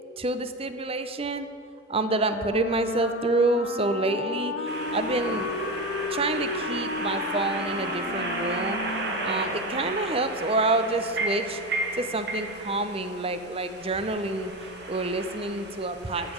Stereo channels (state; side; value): normal; both; correlation 0.21